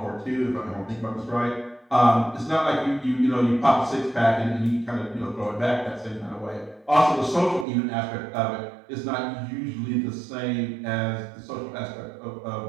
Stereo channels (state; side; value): drops out; left; at 7.7 s